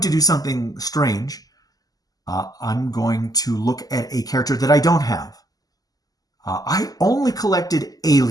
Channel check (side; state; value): right; late; 0.18 ms